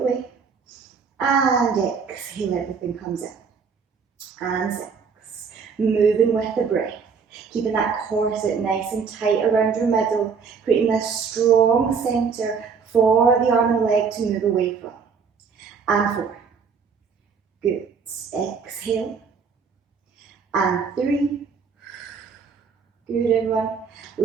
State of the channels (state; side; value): quieter; left; 5.8 dB